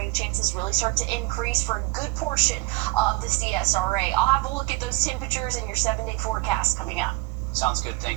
chances really start to increase for a good portion of the CSRA. I'll have a look at those temperatures in your 7-day forecast coming up. Sounds good.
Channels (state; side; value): quieter; left; 22.9 dB